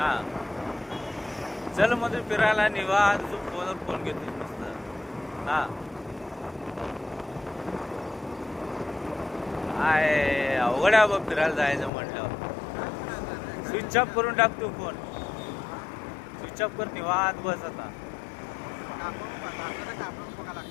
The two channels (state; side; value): drops out; right; at 11.9 s